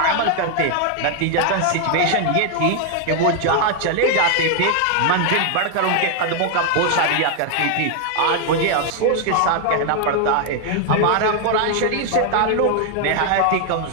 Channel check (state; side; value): different; both; correlation 0.00